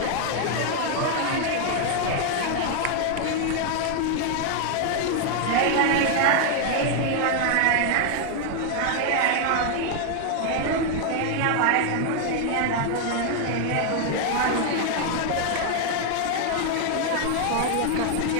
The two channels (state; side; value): different; both; correlation 0.00